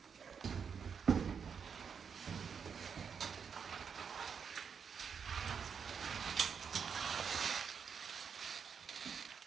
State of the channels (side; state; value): left; quieter; 6.6 dB